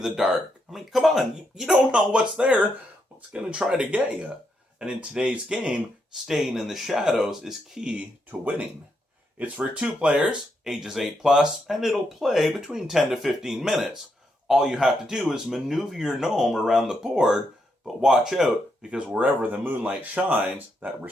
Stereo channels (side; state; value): both; normal; correlation 0.80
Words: the dark. I mean, come on, you don't know what's there. What's going to try to get you? And in today's game, staying in the shadows is key to winning. It's for 2 players, ages 8+, and it'll play between 10 to 15 minutes. All you have to do is maneuver your gnome around the board, but watch out, because wherever the moonlight shines, that